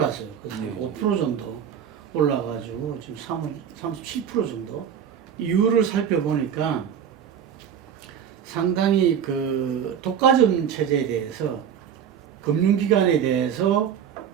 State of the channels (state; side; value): quieter; left; 8.3 dB